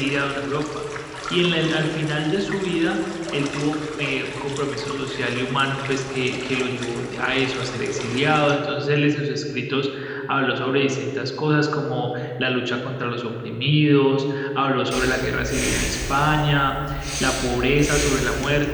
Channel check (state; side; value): identical; both; correlation 1.00